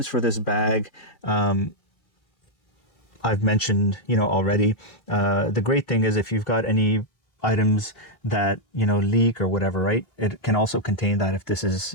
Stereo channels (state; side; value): late; right; 2.6 ms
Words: for this bag, I've mentioned, already. The great thing is if you've got any items that, leak or whatever, right? It can also contain that